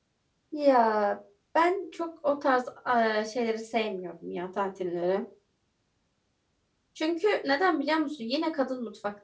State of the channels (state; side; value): identical; both; correlation 1.00